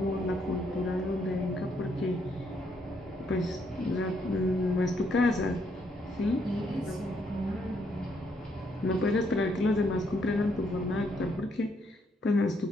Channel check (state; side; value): normal; both; correlation 0.73